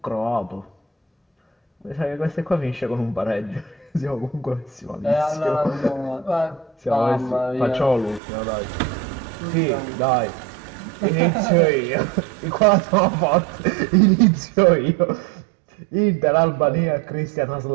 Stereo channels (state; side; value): drops out; left; at 8.2 s